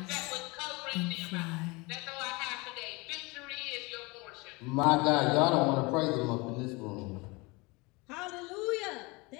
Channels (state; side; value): quieter; right; 25.7 dB